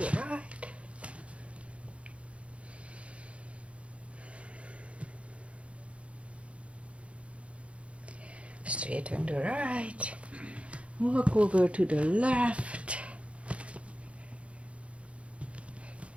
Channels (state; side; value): late; left; 0.062 ms